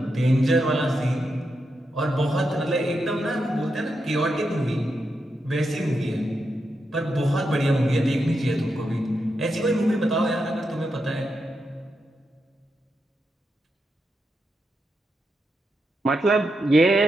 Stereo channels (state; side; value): normal; both; correlation 0.85